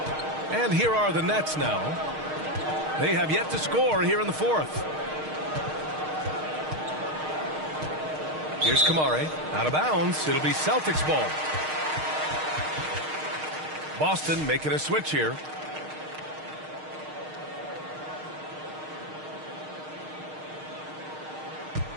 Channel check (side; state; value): left; late; 6.5 ms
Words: And here are the Nets now. They have yet to score here in the fourth. Here's Kamare, out of bounds. It'll be Celtics ball. Boston making a switch here.